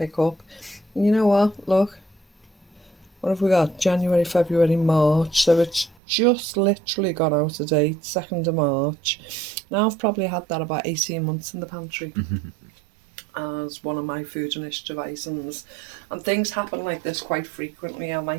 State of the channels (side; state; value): left; drops out; at 6.0 s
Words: up. And you know what? Look. What have we got? January, February, March. So it's just literally gone out of date, 2nd of March. Now I've probably had that about 18 months in the pantry. As one of my Food Initiative items, and things happen like this quite frequently. I